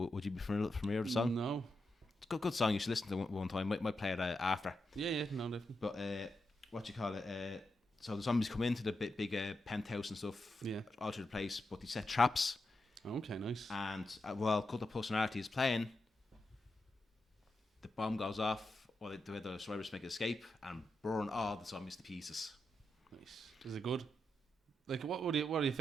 you be familiar with the song? No. It's a good song. You should listen to it one time. Might play it after. Yeah, no, definitely. But so the zombies come into the big penthouse and stuff, all through the place, but they set traps. Okay, nice. And while Cult of Personality is playing, the bomb goes off, or the survivors make an escape and burn all the zombies to pieces. Nice. Is it good? Like, what are the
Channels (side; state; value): both; normal; correlation 0.86